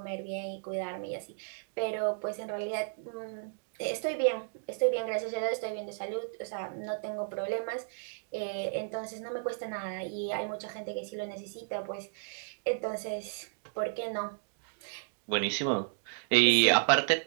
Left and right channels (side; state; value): left; silent; digital silence